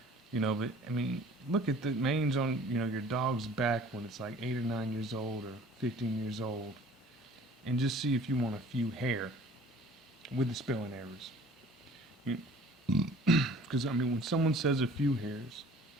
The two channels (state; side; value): normal; both; correlation 0.50